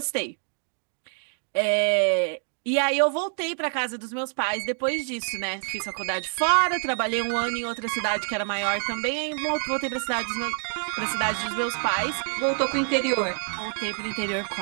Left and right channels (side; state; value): left; silent; 55 dB below the other